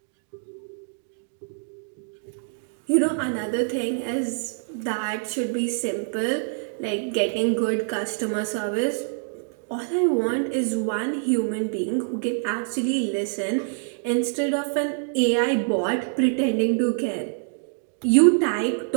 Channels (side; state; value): left; silent; digital silence